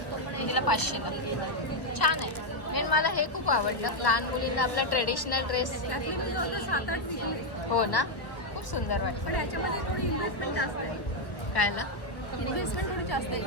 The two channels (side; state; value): right; late; 1.3 ms